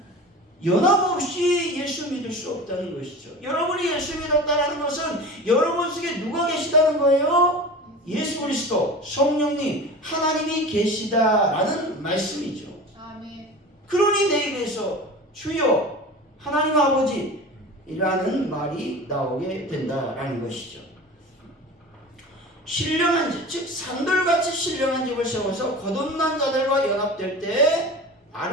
연합 없이 예수 믿을 수 없다는 것이죠. 여러분이 예수 믿었다는 것은 여러분 속에 누가 계시다는 거예요? 예수 그리스도, 성령님, 하나님이 계시다라는 말씀이죠. 아멘. 그러니 내 입에서 주여 하나님 아버지라는 말이 나오게 된다라는 것이죠. 신령한 집, 즉 산돌같이 신령한 집을 세워서 거듭난 자들과 연합될 때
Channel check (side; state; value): both; normal; correlation 0.34